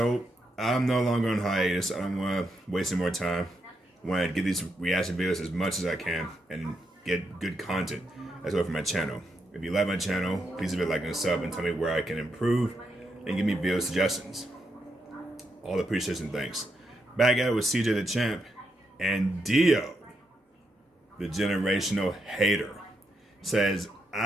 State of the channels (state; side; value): normal; both; correlation 0.82